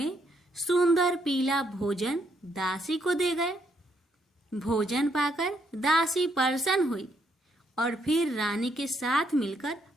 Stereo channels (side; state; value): both; normal; correlation 0.74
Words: सुंदर पीला भोजन दासी को दे गए। भोजन पाकर दासी प्रसन्न हुई और फिर रानी के साथ मिलकर